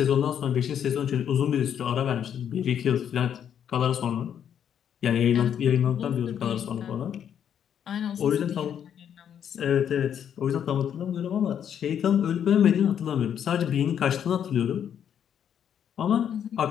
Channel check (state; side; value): quieter; right; 8.9 dB